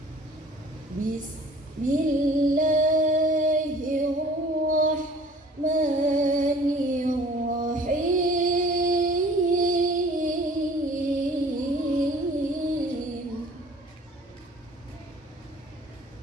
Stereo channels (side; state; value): both; normal; correlation 0.50